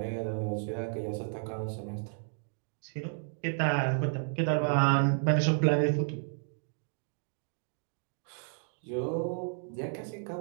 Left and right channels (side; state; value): left; silent; 56 dB below the other